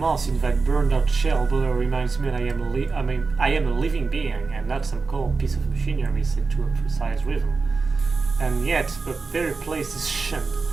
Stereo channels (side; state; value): left; quieter; 4.3 dB